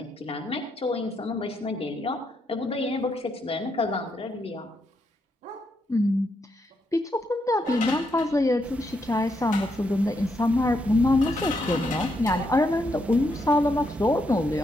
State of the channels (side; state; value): both; normal; correlation 0.79